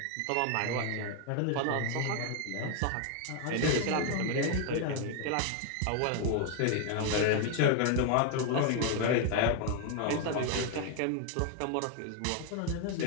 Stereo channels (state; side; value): different; both; correlation 0.01